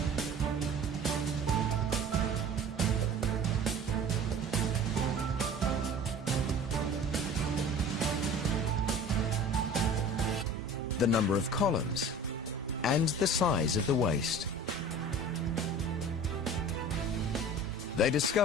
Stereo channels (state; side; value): normal; both; correlation 0.42